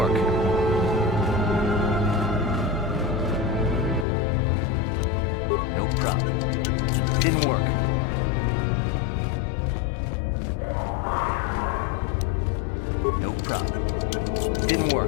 No problem. Didn't work. No problem. Didn't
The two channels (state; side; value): drops out; right; at 4.0 s